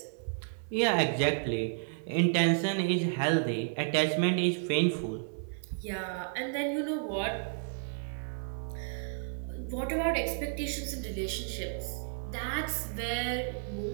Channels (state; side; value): silent; left; 56 dB below the other